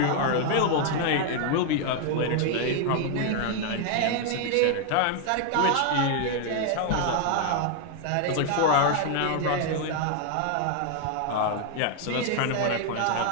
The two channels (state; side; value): different; both; correlation 0.00